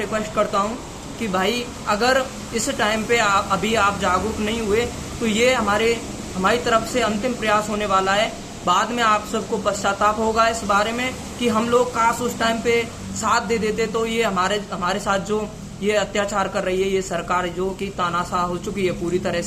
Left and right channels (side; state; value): both; identical; correlation 1.00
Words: करता हूं कि भाई, अगर इस टाइम पे अभी आप जागरूक नहीं हुए तो ये हमारी तरफ से अंतिम प्रयास होने वाला है। बाद में आप सबको पश्चाताप होगा इस बारे में कि हम लोग काश उस टाइम पे साथ दे देते, तो ये हमारे साथ जो ये अत्याचार कर रही है ये सरकार, जो कि तानाशाह हो चुकी है पूरी तरह